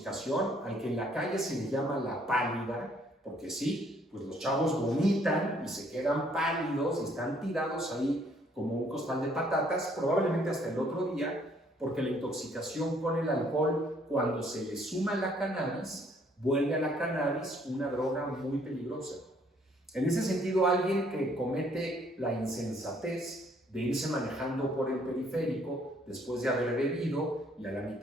al que en la calle se le llama la pálida, porque sí, pues los chavos vomitan y se quedan pálidos y están tirados ahí como un costal de patatas, probablemente hasta el otro día, porque la intoxicación con el alcohol, cuando se le suma la cannabis, vuelve a la cannabis una droga muy peligrosa. En ese sentido, alguien que comete la insensatez de irse manejando por el periférico después de haber bebido y a la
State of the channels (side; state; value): both; normal; correlation 0.64